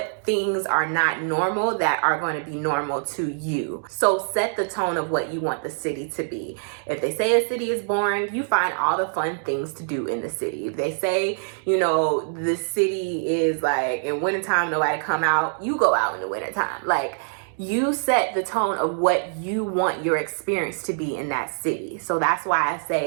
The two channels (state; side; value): silent; left; 62 dB below the other